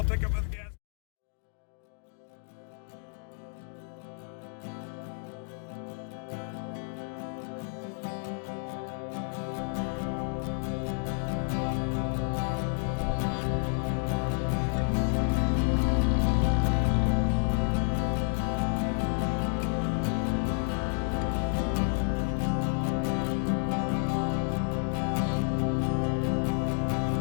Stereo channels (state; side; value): silent; right; 58 dB below the other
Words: pick up at the gas.